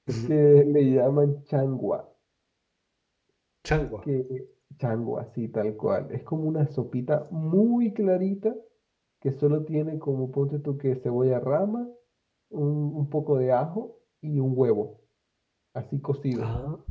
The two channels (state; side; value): identical; both; correlation 1.00